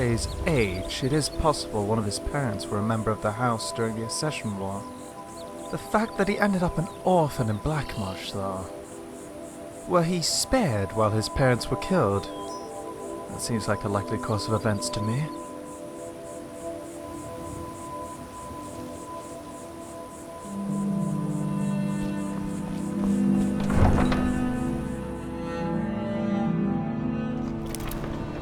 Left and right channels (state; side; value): identical; both; correlation 1.00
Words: age, it is possible one of his parents were a member of the house during the Accession War. The fact that he ended up an orphan in Blackmarsh, though. Were he spared while his parents were killed? That seems like a likely course of events to me.